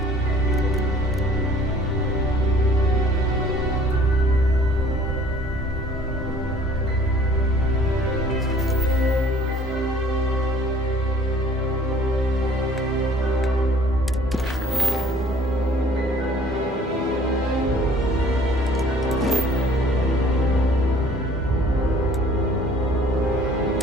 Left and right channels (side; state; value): both; normal; correlation 0.54